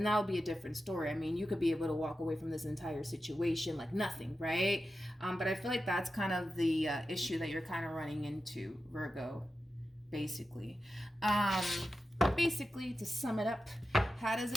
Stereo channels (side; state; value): both; normal; correlation 0.91